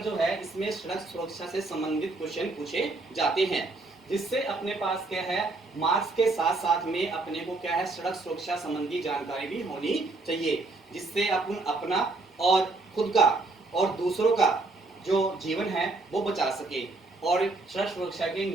जो है इसमें सड़क सुरक्षा से संबंधित क्वेश्चन पूछे जाते हैं, जिससे अपने पास क्या है मार्क्स के साथ साथ में अपने को क्या है सड़क सुरक्षा संबंधी जानकारी भी होनी चाहिए, जिससे अपन अपना और खुद का और दूसरों का जो जीवन है वो बचा सके और सड़क सुरक्षा के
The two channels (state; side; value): quieter; left; 3.3 dB